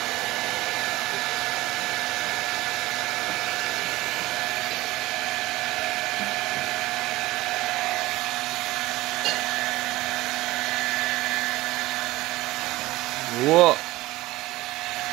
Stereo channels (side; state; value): left; quieter; 18.5 dB